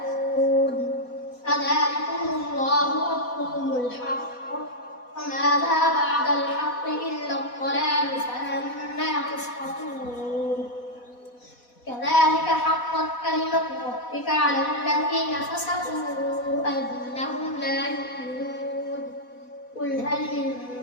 فذلكم الله ربكم الحق وماذا بعد الحق إلا الضلال فأنى تسقطون كذلك حقت كلمة ربك على الذين فسقوا أنهم لا يؤمنون قل هل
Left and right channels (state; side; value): late; right; 4.1 ms